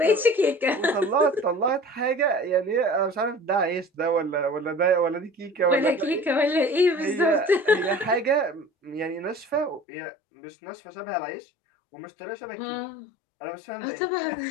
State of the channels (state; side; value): drops out; right; at 9.8 s